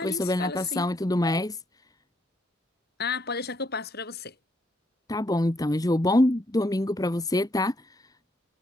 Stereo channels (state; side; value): normal; both; correlation 0.74